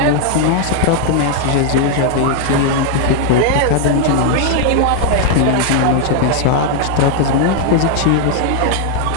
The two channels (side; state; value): both; different; correlation 0.00